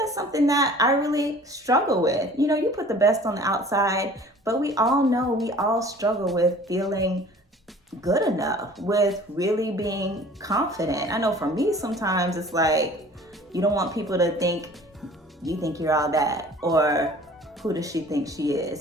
something that I really struggle with. You know, you put the best on the outside, but we all know, we all struggle with feeling good enough, with really being confident. I know for me, sometimes it's like, you don't want people to think you think you're all that, or who does she think she is?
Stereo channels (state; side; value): normal; both; correlation 0.48